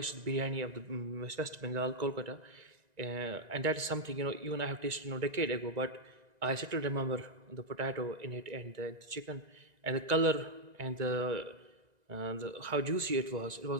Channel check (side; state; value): left; late; 1.9 ms